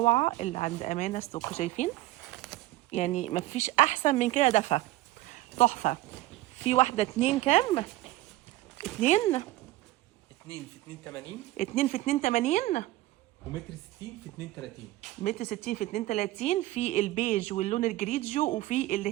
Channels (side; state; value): left; quieter; 17.0 dB